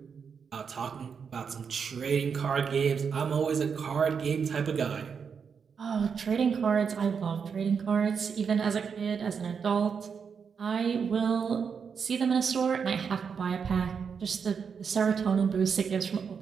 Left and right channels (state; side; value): quieter; left; 6.3 dB